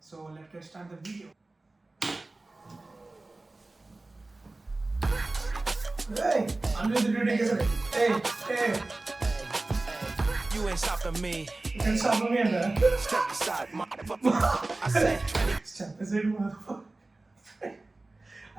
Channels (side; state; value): left; quieter; 3.1 dB